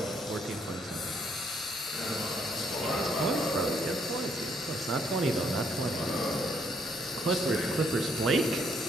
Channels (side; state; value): both; normal; correlation 0.70